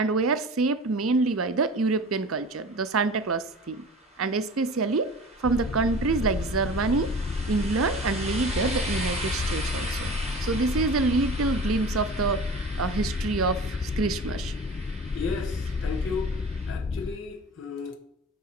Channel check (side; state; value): both; normal; correlation 0.38